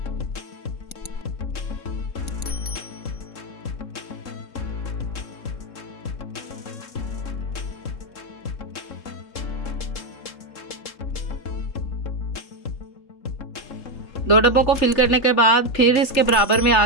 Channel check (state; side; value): late; right; 3.3 ms